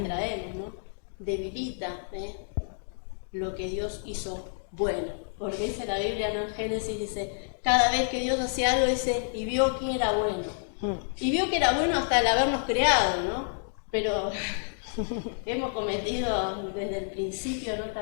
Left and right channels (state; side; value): silent; right; digital silence